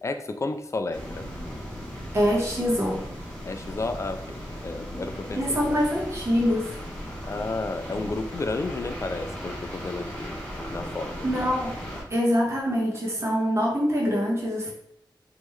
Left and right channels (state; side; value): normal; both; correlation 0.84